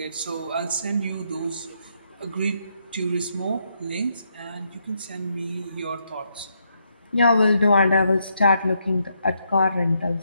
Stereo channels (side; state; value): both; inverted; correlation -0.78